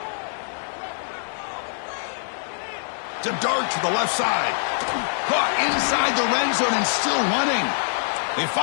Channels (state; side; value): silent; right; digital silence